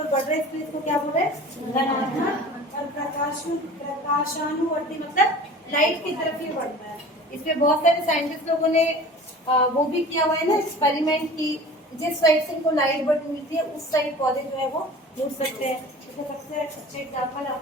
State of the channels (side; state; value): both; normal; correlation 0.41